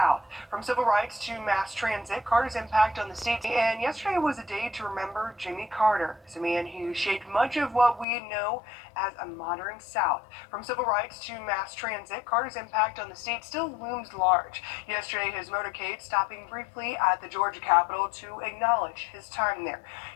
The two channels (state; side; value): drops out; right; at 8.1 s